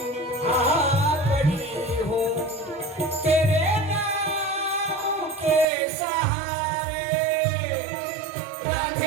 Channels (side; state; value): left; drops out; at 5.7 s